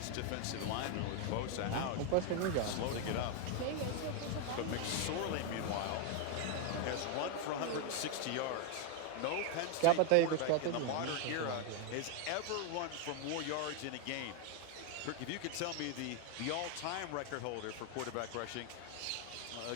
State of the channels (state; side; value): different; both; correlation 0.01